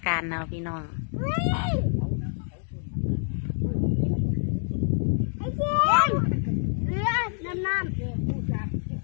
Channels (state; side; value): silent; right; digital silence